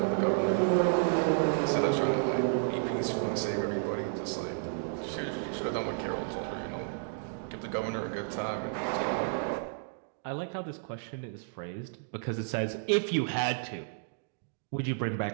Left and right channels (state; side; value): silent; left; digital silence